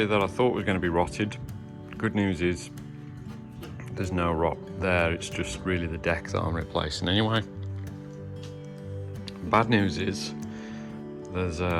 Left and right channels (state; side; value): identical; both; correlation 1.00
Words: that I thought was going to be rotted, good news is there's no rot there, it's just really the deck that I'm replacing anyway. Bad news is there's